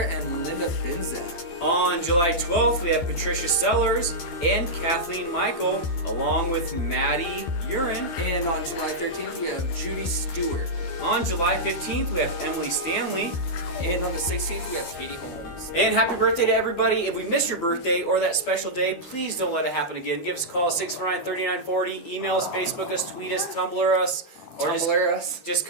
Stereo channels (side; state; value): right; late; 12 ms